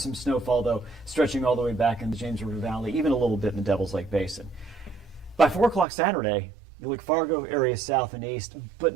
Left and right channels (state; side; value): drops out; left; at 5.9 s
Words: snowfall though, stretching all the way back in the James River Valley, even a little bit in the Devil's Lake Basin. By 4 o'clock Saturday, you look Fargo area south and east,